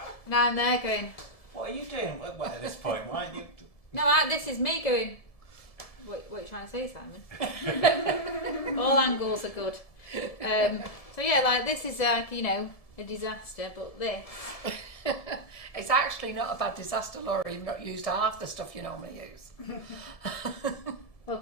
Now I'm there going, What are you doing? Well, at this point, why aren't you? no, this is me going, what are you trying to say, Simon? All angles are good. So yeah, like this is like, you know, a disaster, but this. It's actually not a bad disaster, Laura. You've not used half the stuff you normally use. Well,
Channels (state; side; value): late; right; 1.7 ms